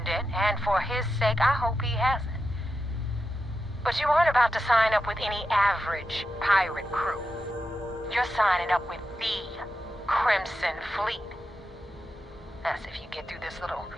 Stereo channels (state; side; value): normal; both; correlation 0.89